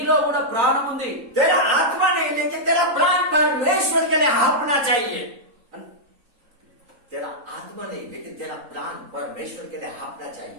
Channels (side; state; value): left; late; 3.8 ms